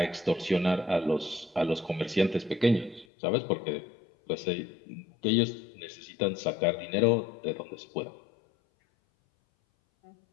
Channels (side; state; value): right; drops out; at 3.1 s